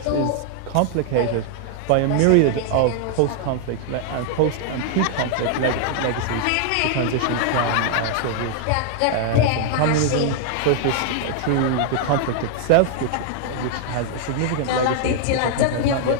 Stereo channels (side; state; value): both; different; correlation 0.00